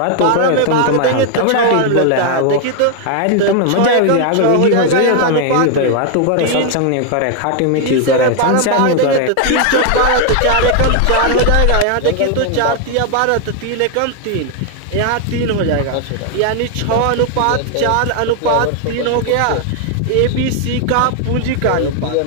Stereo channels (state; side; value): different; both; correlation 0.00